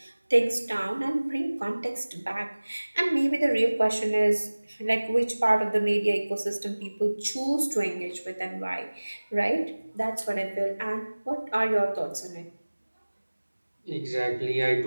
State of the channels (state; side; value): inverted; both; correlation -1.00